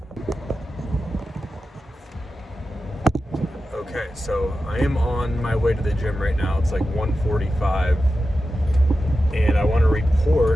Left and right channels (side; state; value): both; normal; correlation 0.92